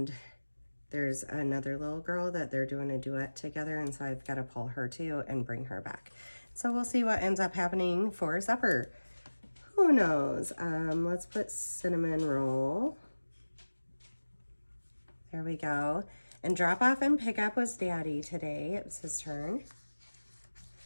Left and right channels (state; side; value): inverted; both; correlation -1.00